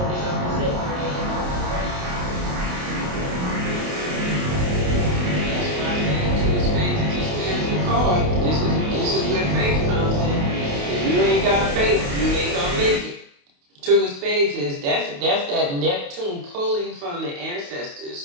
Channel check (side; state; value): left; late; 28 ms